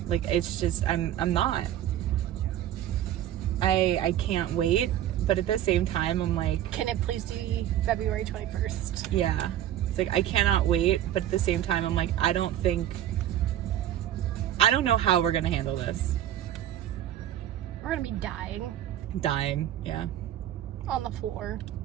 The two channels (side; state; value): left; quieter; 11.8 dB